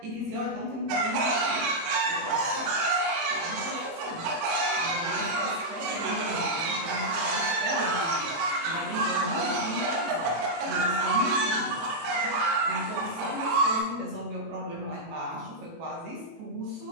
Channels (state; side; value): late; left; 18 ms